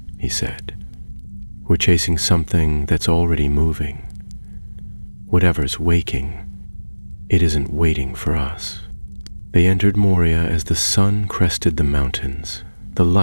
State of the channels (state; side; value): inverted; both; correlation -1.00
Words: he said. We're chasing something that's already moving. Whatever's waking, it isn't waiting for us. They entered Moria as the sun crested the mountains. The